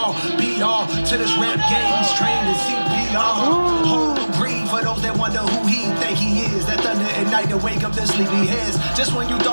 be all to this rap game. He's trained in CPR. Hold and breathe for those that wonder who he think he is. That thunder at night to wake up their sleepy heads. Just when you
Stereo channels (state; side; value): inverted; both; correlation -1.00